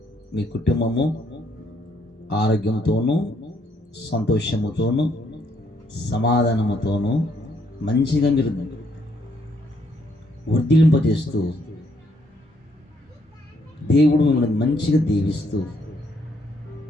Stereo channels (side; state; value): both; normal; correlation 0.71